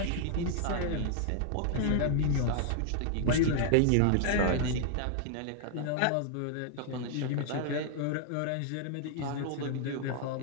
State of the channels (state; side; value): different; both; correlation 0.00